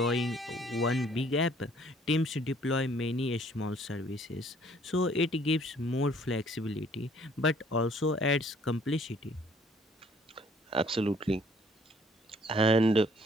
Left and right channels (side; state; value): both; normal; correlation 0.60